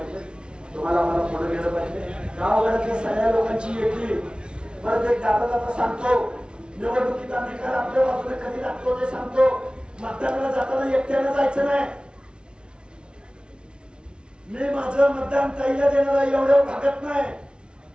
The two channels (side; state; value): left; late; 0.056 ms